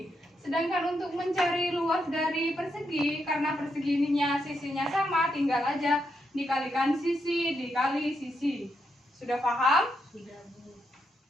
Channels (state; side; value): normal; both; correlation 0.81